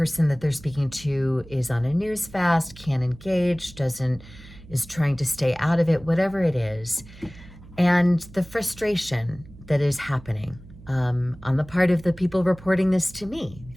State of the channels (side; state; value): right; noise; hum, 20 dB below the sound